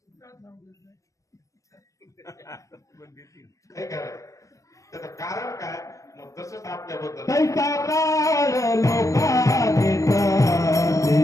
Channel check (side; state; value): right; late; 0.16 ms